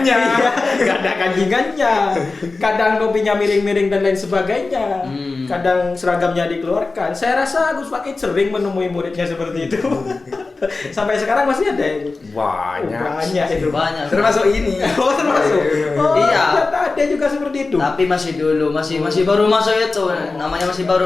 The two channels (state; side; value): quieter; right; 3.7 dB